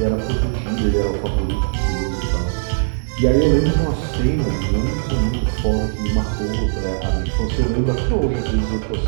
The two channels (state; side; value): silent; left; digital silence